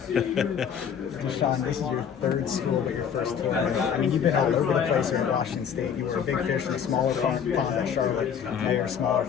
Sean, this is your third school, but your first team. I mean, you've been all over the place here in Washington State. You were a big fish in a smaller pond at Charlotte. Now you're a smaller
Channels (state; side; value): quieter; right; 7.8 dB